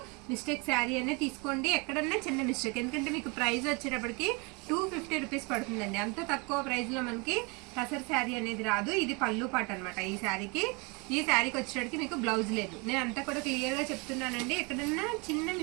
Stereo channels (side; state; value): left; quieter; 29.5 dB